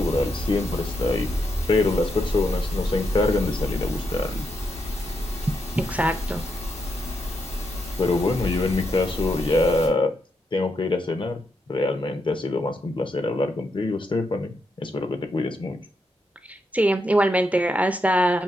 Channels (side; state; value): both; normal; correlation 0.81